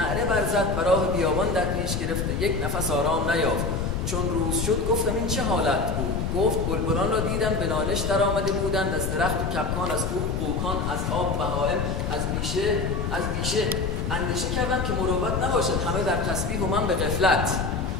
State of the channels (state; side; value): noise; left; rumble, 2 dB below the sound